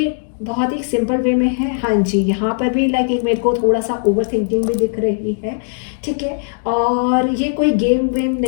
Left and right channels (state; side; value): silent; right; digital silence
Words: बहुत ही सिंपल वे में है। हाँ जी, यहाँ पर भी लाइक एक मेरे को थोड़ा सा ओवर थिंकिंग भी दिख रही है, ठीक है। और ये कोई गेम वेम